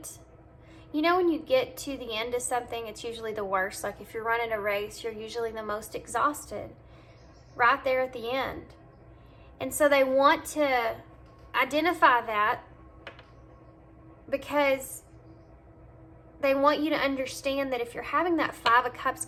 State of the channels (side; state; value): both; identical; correlation 1.00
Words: you know, when you get to the end of something, it's usually the worst. Like if you're running a race, you're usually the most exhausted right there at the end. And so they want to identify that, because they want you to understand that if you're having that 5 of Cups